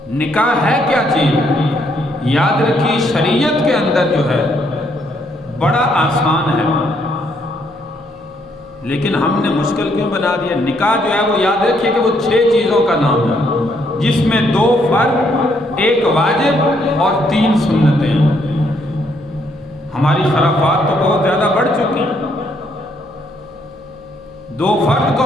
نکاح ہے کیا چیز؟ یاد رکھیے شریعت کے اندر جو ہے بڑا آسان ہے، لیکن ہم نے مشکل کیوں بنا دیا؟ نکاح جو ہے وہ یاد رکھیے کہ وہ 6 چیزوں کا نام ہے، جس میں 2 فرض، 1 واجب اور 3 سنتیں ہیں۔ ہماری خرافات تو بہت زیادہ بڑھ چکی ہیں۔ 2 فرض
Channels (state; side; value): noise; right; hum, 26 dB below the sound